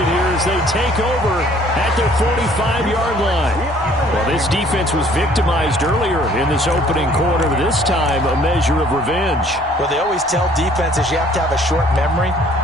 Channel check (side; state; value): both; normal; correlation 0.58